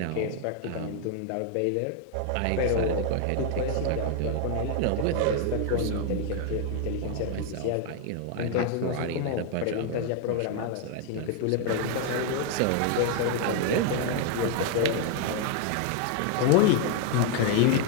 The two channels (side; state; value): both; different; correlation 0.00